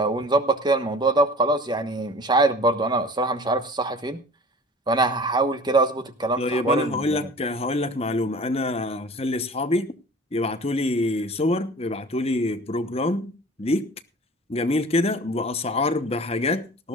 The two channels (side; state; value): both; normal; correlation 0.43